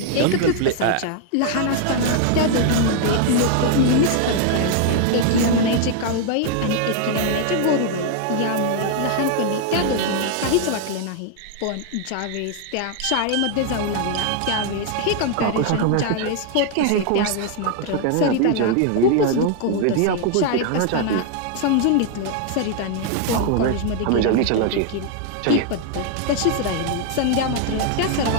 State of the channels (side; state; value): both; different; correlation 0.00